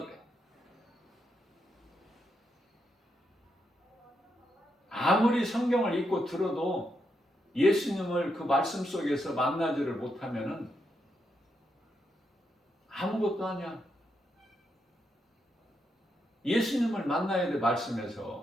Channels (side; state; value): both; normal; correlation 0.81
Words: 그래. 아무리 성경을 읽고 들어도 예수님을 그 말씀 속에서 만나지를 못하면은 아무것도 아니야. 예수님을 만나야 돼,